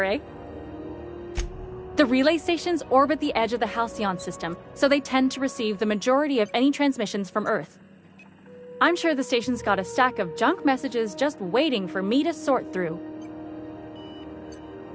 eh? The relay stations orbit the edge of the Halcyon system, so they tend to receive the majority of any transmissions from Earth. I'm sure the station's got a stack of junk messages just waiting for me to sort through.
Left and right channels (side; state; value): both; identical; correlation 1.00